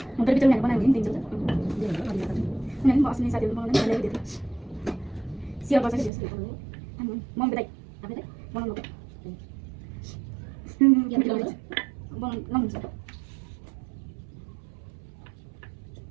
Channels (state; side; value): drops out; left; at 6.1 s